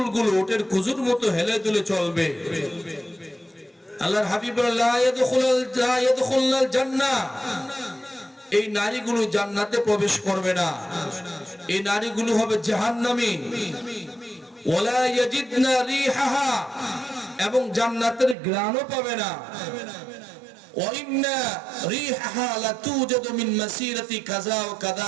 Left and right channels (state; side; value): drops out; left; at 18.4 s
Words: ওটের কুজুর মতো হেলে দুলে চলবে। আল্লাহর হাবিব লা ইয়াদখুলুল জান্নাহ, এই নারীগুলো জান্নাতে প্রবেশ করবে না, এই নারীগুলো হবে জাহান্নামী। ওয়ালা ইয়াজিদনা রিহাহা, এবং জান্নাতের ঘ্রাণও পাবে না। ওয়া ইন্না রিহাহা লাতুজাদু মিন মাসিরাতি কাযা ওয়া